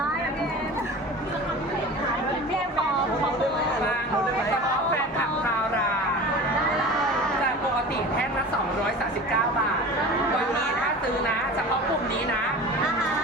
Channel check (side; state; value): both; normal; correlation 0.36